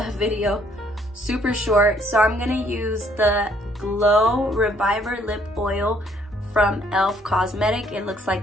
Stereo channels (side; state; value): both; normal; correlation 0.65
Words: video super short. So I'm gonna use the Glow Reviver Lip Oil from e.l.f. Cosmetic. It looks